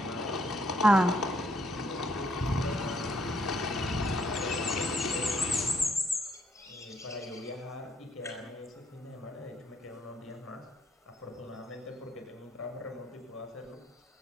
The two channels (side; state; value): both; normal; correlation 0.70